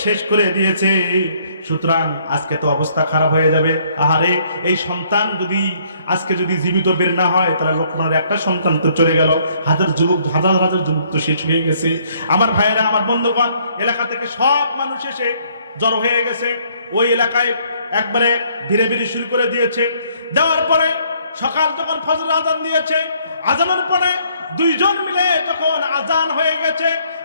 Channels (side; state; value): both; inverted; correlation -0.65